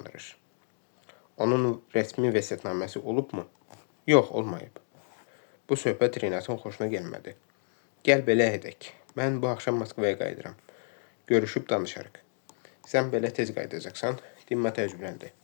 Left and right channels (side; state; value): right; silent; digital silence